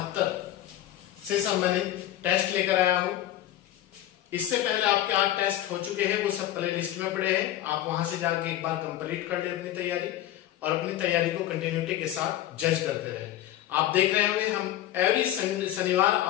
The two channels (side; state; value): right; quieter; 13.1 dB